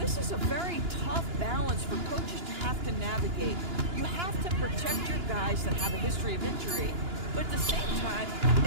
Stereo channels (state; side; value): late; left; 2.9 ms